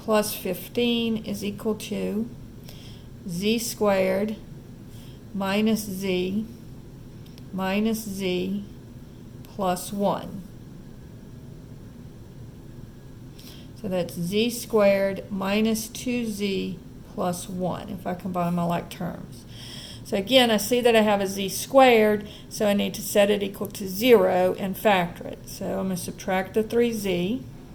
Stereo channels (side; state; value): both; identical; correlation 1.00